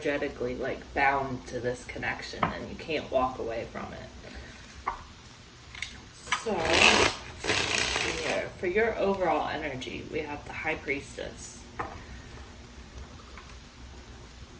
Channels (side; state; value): both; identical; correlation 1.00